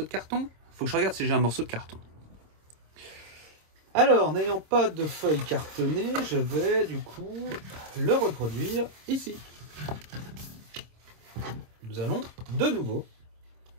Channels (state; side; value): late; left; 26 ms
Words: de carton? Faut que je regarde si j'ai un morceau de carton. Alors, n'ayant pas de feuille cartonnée, je vais du coup le reproduire ici. Nous allons de nouveau